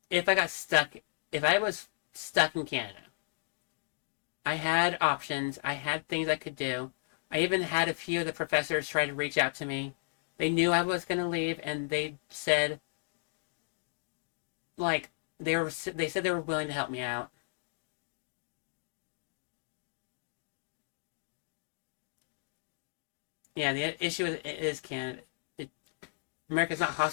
if I was stuck in Canada, I had options, I had things I could do. I even had a few of the professors try to reach out to me. They knew I was going to leave, and they said, like, they said they were willing to help me out. Yeah, the issue is Canada. It, America's not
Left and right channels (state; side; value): silent; right; digital silence